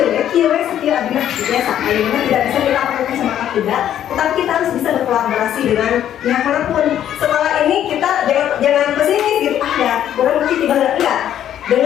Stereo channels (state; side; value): quieter; right; 10.7 dB